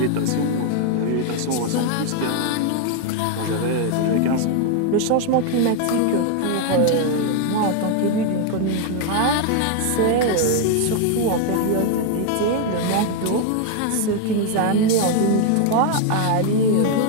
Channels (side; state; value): both; different; correlation 0.01